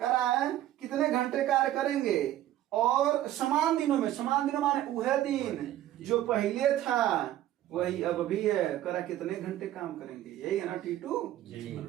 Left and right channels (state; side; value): quieter; left; 13.2 dB